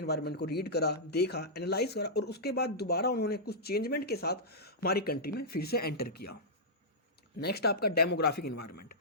को रीड करा, देखा, एनालाइज करा और उसके बाद दोबारा उन्होंने कुछ चेंजमेंट के साथ हमारी कंट्री में फिर से एंटर किया। नेक्स्ट आपका डेमोग्राफिक इन्वायरमेंट।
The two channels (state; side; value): normal; both; correlation -0.13